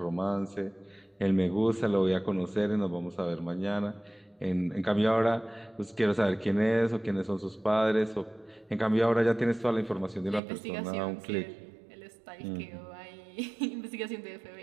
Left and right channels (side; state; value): left; drops out; at 10.4 s